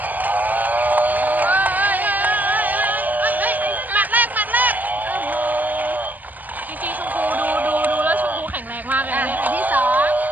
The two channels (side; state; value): left; late; 0.084 ms